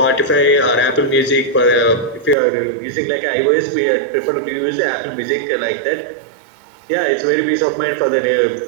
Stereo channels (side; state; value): left; drops out; at 2.4 s